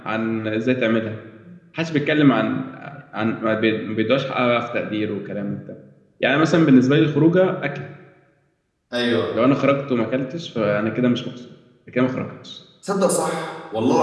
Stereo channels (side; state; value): both; identical; correlation 1.00